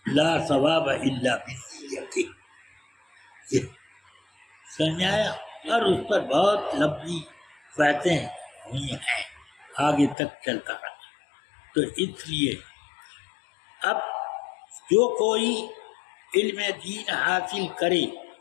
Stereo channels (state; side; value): drops out; right; at 10.2 s